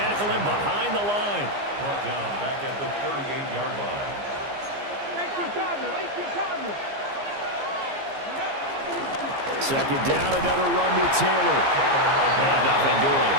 him behind the line. Brought down back at the 38-yard line. 18 Cardinal. 18 Cardinal. Second down, another run to Taylor. And nothing doing.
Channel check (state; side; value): late; left; 15 ms